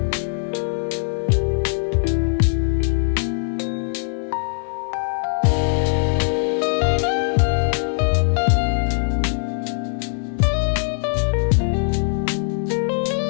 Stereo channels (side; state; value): right; silent; 65 dB below the other